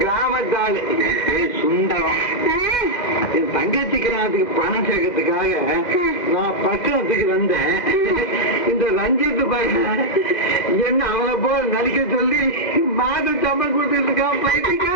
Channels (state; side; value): late; right; 2.0 ms